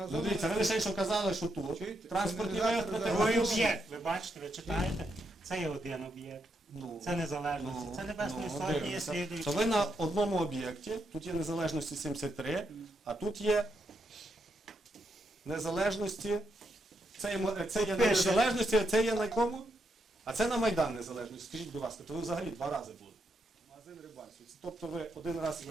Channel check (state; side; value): normal; both; correlation 0.80